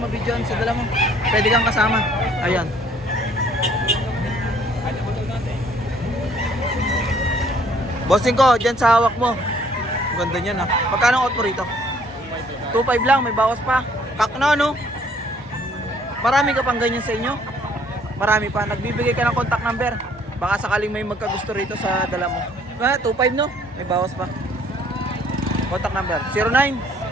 sa dala mo. Pwede kang kasama. Ayan. Bossing ko, dyan sa hawak mo. Ang ganda niyan, ha. Magkano ang out mo rito? 2.5 lang, may bawas pa. Kakna, no? Marami ka pang ganyan sa inyo? Marami pa. Nagbibigay ka ng contact number. Baka sakaling may magkagusto rito sa dala mo. 2.5, no? May bawas pa. Contact number. 09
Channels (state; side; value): normal; both; correlation 0.60